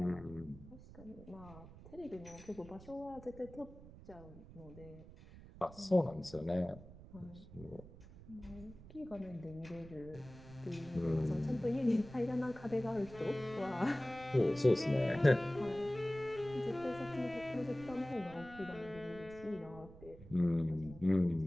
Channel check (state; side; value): noise; right; rumble, 17 dB below the sound